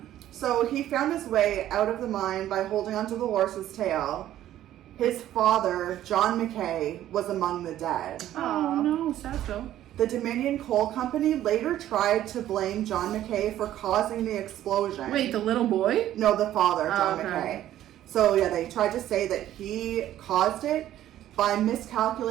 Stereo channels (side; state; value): left; quieter; 12.6 dB